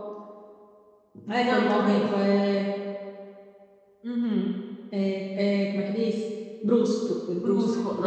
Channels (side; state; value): both; identical; correlation 1.00